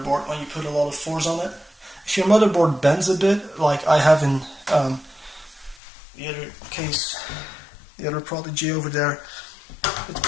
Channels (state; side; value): drops out; right; at 5.8 s